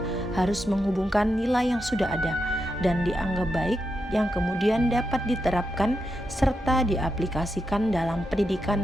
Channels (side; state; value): both; normal; correlation 0.86